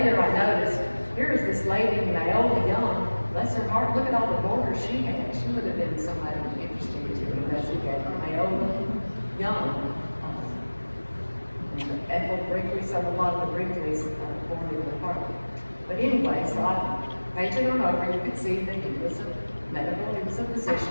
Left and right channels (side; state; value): both; inverted; correlation -1.00